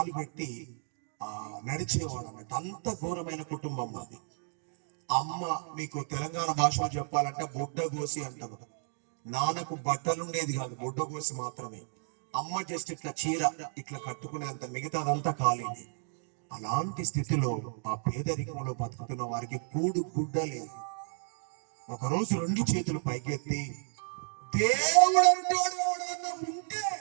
పెట్టి నడిచేవాడు అన్నట్టు. అంత ఘోరమైన కుటుంబం అది. అమ్మ, మీకు తెలంగాణ భాషలో చెప్పాలంటే బొడ్డగోసి అంటారు. నాన్నకు బట్టలు ఉండేది కాదు, బొడ్డగోసి మాత్రమే. అమ్మ జస్ట్ ఇట్లా చీర ఇట్లా కట్టుకునేంత, మిగతాదంతా ఖాళీని. అలాంటి స్థితిలో ఆ పేదరికంలో బతుకుతున్న వారికి కూడు గుడ్డ లేదు. ఒకరోజు 2 చేతులు పైకెత్తి, దేవుడు అంటాడు ఎవడన్నా ఉంటే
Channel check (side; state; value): left; silent; 56 dB below the other